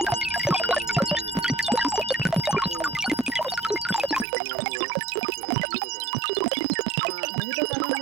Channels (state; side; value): drops out; left; at 4.2 s